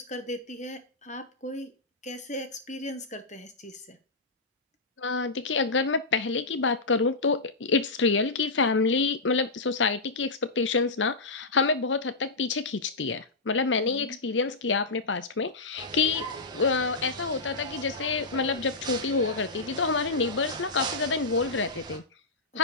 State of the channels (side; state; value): right; quieter; 3.5 dB